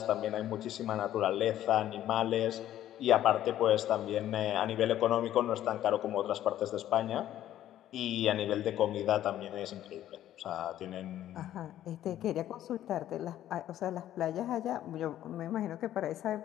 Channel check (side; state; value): right; quieter; 12.3 dB